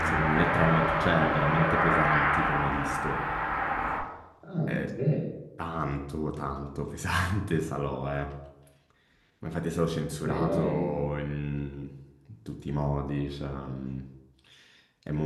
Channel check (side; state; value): both; identical; correlation 1.00